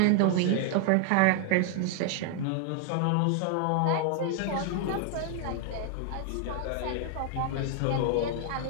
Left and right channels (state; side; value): different; both; correlation 0.00